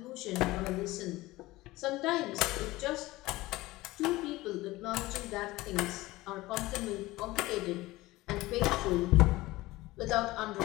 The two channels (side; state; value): right; quieter; 19.1 dB